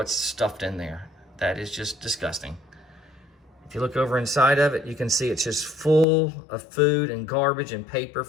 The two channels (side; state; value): right; drops out; at 6.1 s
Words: stuffed in there. That is just disgusting. If you look over inside of it, you can see it's just full of food and garbage and paper